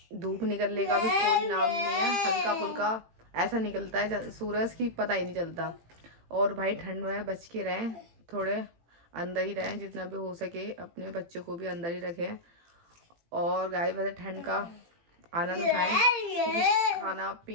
धूप निकलने का भी कोई नाम नहीं है, हल्का फुल्का ऐसा निकलता है सूरज की, पता ही नहीं चलता। और भाई ठंड में बच के रहें, थोड़े अंदर ही रहें, जितना भी हो सके अपने बच्चों को भी अंदर ही रखें। और गाय वैसे ठंड का आनंद उठाएं, क्योंकि खाना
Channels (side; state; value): left; late; 18 ms